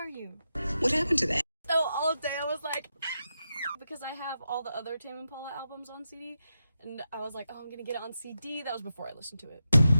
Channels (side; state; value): both; inverted; correlation -0.88